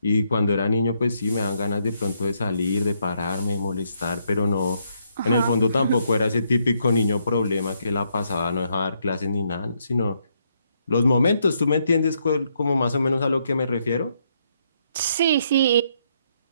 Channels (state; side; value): inverted; both; correlation -0.75